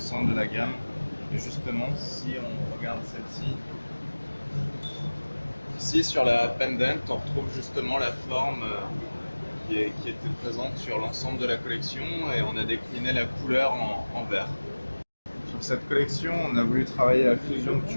de la gamme. Et justement, si on regarde celle-ci, ici sur la pendant, on retrouve justement la forme qui était présente sur l'ensemble de la collection, et on a décliné la couleur en vert. Sur cette collection, on a voulu travailler la fusion de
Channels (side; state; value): both; inverted; correlation -1.00